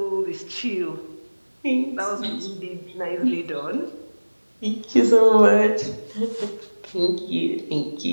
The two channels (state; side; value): inverted; both; correlation -1.00